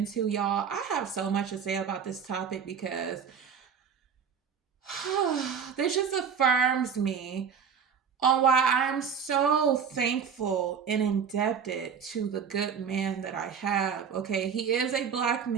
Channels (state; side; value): quieter; left; 6.8 dB